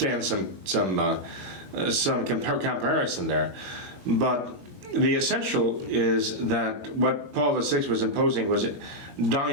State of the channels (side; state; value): left; late; 22 ms